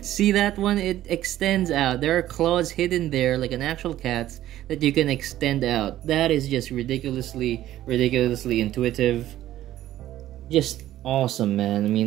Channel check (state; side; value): quieter; left; 13.5 dB